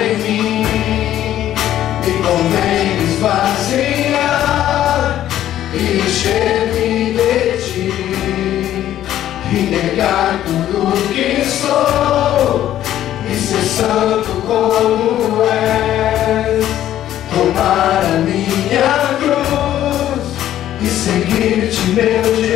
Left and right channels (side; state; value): right; quieter; 12.2 dB